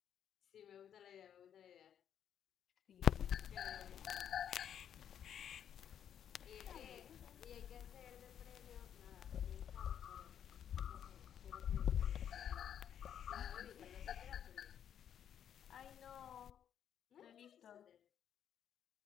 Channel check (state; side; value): quieter; right; 9.2 dB